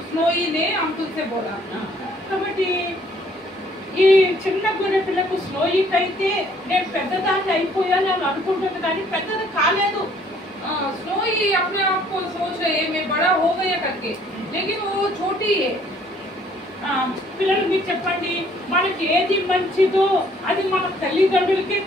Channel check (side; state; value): both; normal; correlation 0.61